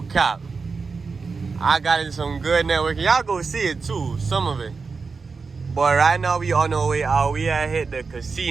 I got in some good networking. Y'all go see it too, some of it. But right now we on our way out. We had hit the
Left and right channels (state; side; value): quieter; left; 4.7 dB